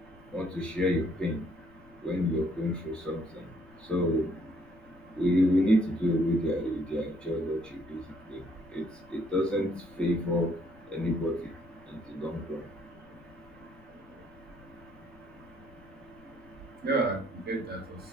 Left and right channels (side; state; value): left; noise; rumble, 24 dB below the sound